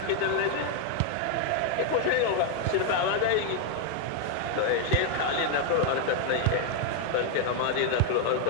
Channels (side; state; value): both; different; correlation 0.00